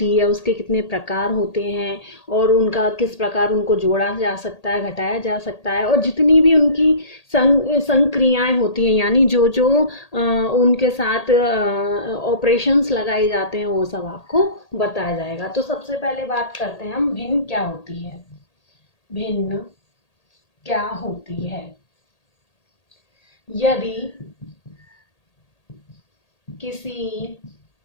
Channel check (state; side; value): late; right; 1.8 ms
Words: है, उसके कितने प्रकार होते हैं और उनका किस प्रकार उनको जोड़ा जा सकता है, घटाया जा सकता है, और जितनी भी उनकी संक्रियाएं होती हैं, यानी जो जो उनके साथ ऑपरेशंस लगाए जाते हैं, वो सब आपको बताया जाएगा। तो सबसे पहले बात करते हैं हम, भिन्न क्या होती है। भिन्न क्या होती है? यदि किसी